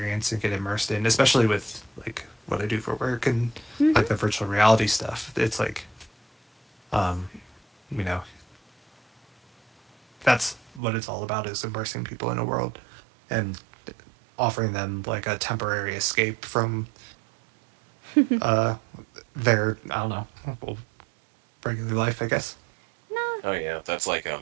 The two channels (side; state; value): left; drops out; at 10.8 s